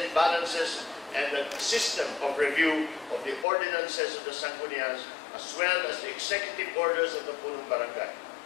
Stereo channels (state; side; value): drops out; right; at 3.5 s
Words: balances and the system of review of the ordinances of the Sangguniang as well as the executive orders of the Punong Barangay.